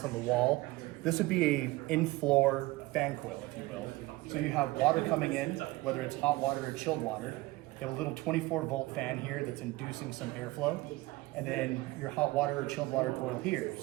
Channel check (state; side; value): quieter; left; 20.3 dB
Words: on the wall, this would be a in-floor fan coil, if you will. So you have water coming in, whether it's hot water or chilled water. You have a little 24-volt fan here that's inducing some airflow. And then your hot water or chilled water coil here.